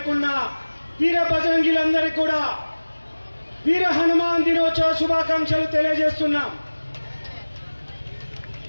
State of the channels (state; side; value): inverted; both; correlation -1.00